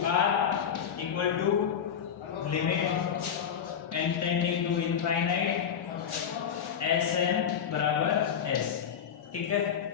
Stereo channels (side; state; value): right; quieter; 8.0 dB